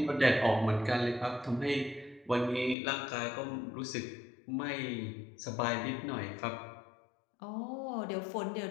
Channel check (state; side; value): drops out; right; at 2.8 s